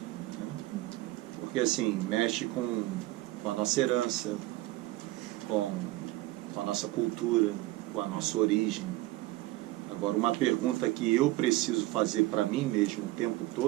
Porque assim, mexe com a nossa herança, com a nossa cultura, com a nossa origem. Agora, uma pergunta que eu preciso fazer para mim mesmo o tempo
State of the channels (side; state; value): left; quieter; 18.2 dB